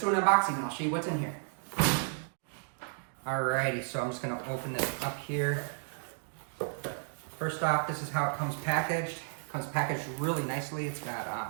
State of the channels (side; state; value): left; silent; digital silence